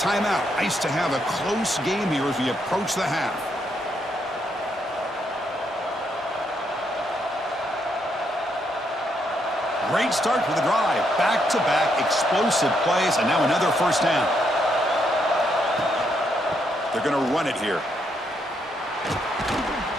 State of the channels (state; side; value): normal; both; correlation 0.76